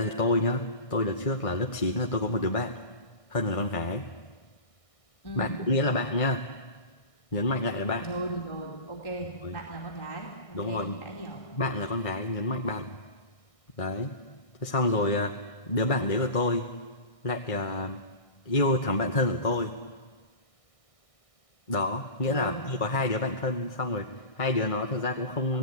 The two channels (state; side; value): late; right; 1.6 ms